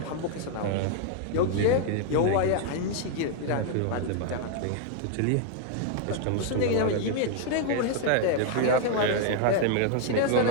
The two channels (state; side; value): different; both; correlation 0.00